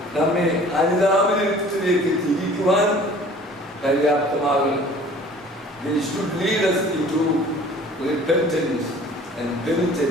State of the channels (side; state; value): both; normal; correlation 0.49